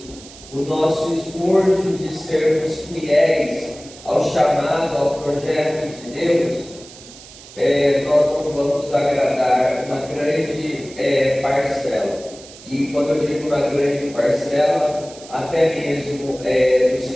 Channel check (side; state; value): right; noise; hiss, 19 dB below the sound